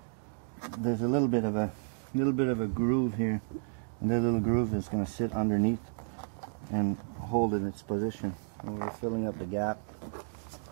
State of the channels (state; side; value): silent; left; digital silence